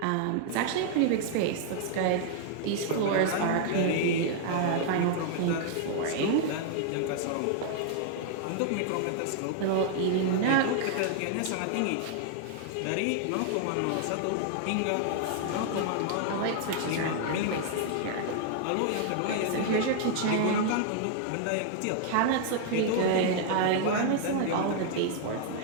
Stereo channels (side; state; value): both; different; correlation 0.00